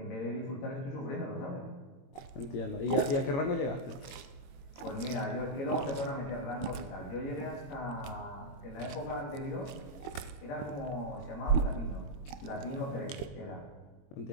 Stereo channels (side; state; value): right; late; 22 ms